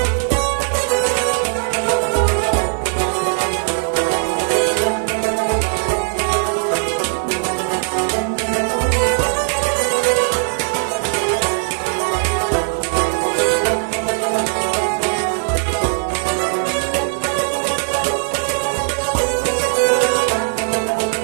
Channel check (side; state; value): left; silent; 58 dB below the other